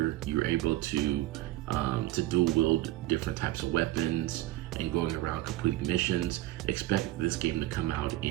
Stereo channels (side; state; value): left; quieter; 16.2 dB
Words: You're able to dual wield different types of weapons and going around completing missions. Expect this game to come out